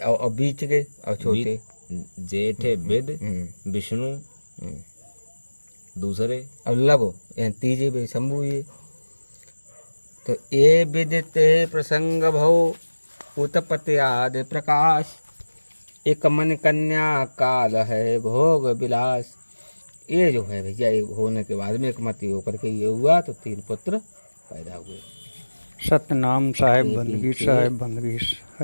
और बीच के और छोटे जेठे विद विष्णु दूसरे और लघु, यानी तीजे वे शंभु ये। तो ये विदिते प्रसंग भव उत्पत्ति आदि प्रकाश, एक मन कन्या काल है भोग विलास। ये जो है भैया, ये होने के बाद में एक मति होकर के ये हुआ, तो 3 पुत्र पैदा हुए। सतनाम साहेब बंदगी, साहेब बंदगी,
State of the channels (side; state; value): both; inverted; correlation -1.00